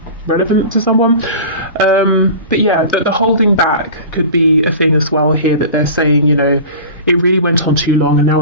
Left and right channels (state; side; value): inverted; both; correlation -0.36